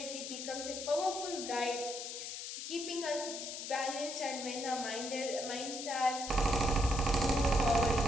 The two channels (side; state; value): left; noise; hiss, 7 dB below the sound